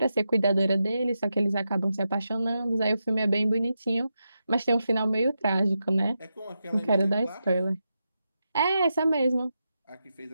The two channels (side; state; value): both; inverted; correlation -0.88